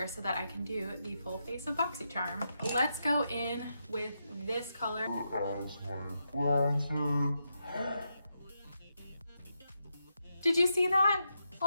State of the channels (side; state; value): both; inverted; correlation -0.85